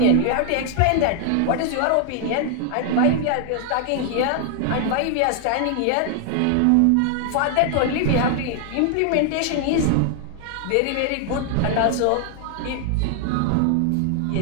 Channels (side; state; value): both; different; correlation 0.00